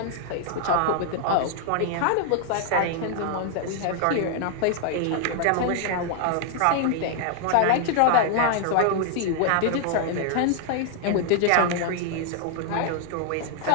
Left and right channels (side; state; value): both; different; correlation 0.00